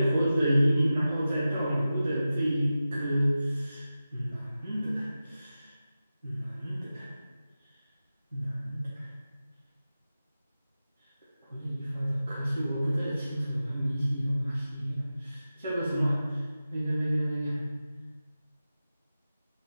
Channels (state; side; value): inverted; both; correlation -0.94